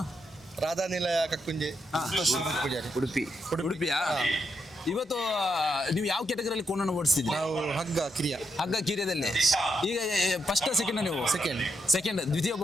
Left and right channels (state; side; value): normal; both; correlation 0.81